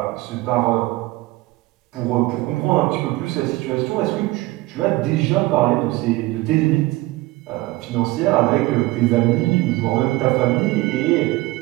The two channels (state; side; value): quieter; left; 19.5 dB